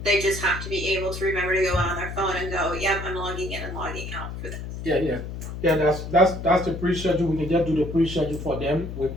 They just have to be able to remember to go on their phone and go, yep, I'm logging in and logging out for this. Yeah. That's the pre-schedule. We can just do the pre-schedule for them with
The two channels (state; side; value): noise; left; hum, 8 dB below the sound